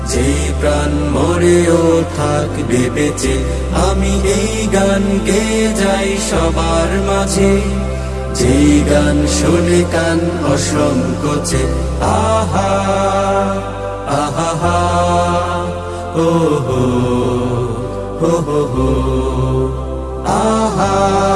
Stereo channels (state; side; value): identical; both; correlation 1.00